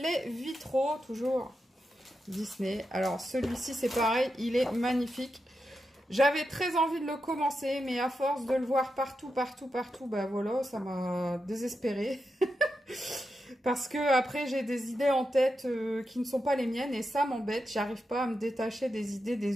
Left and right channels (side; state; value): both; normal; correlation 0.88